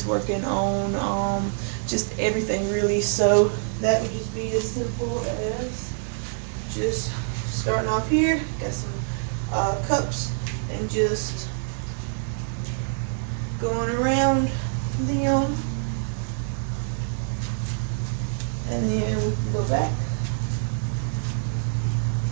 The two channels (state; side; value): silent; left; digital silence